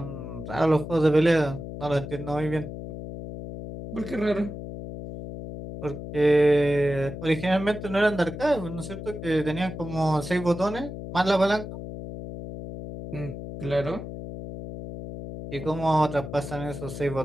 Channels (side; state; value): left; noise; hum, 9 dB below the sound